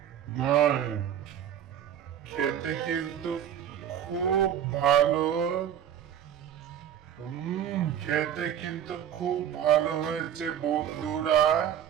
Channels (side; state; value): left; quieter; 9.8 dB